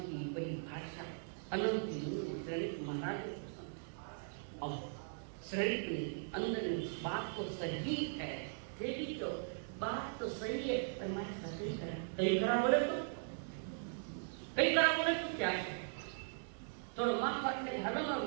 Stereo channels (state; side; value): silent; left; digital silence